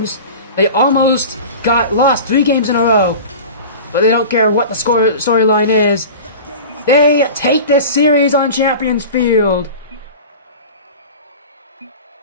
They almost lost 3 games in a row. But they don't care what the storyline is. They take this series on Champions Field.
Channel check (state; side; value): inverted; both; correlation -0.34